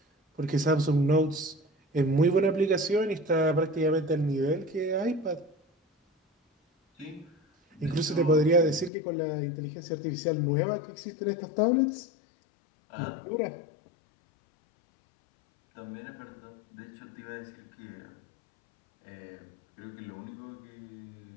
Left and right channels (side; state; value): right; drops out; at 8.9 s